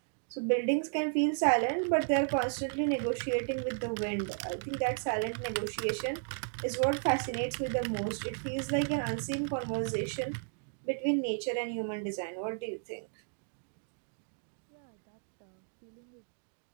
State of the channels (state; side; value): silent; left; digital silence